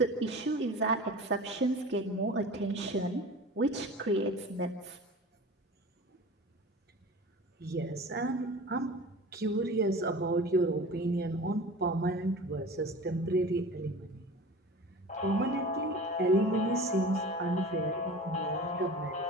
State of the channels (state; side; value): normal; both; correlation 0.37